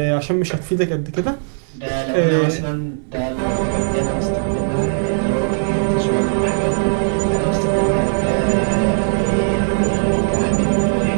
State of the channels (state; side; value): silent; left; 67 dB below the other